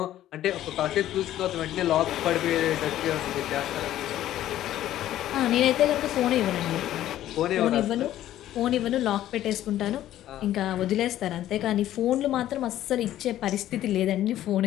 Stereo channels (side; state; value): right; quieter; 12.9 dB